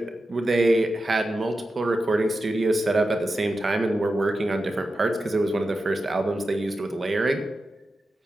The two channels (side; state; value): both; normal; correlation 0.91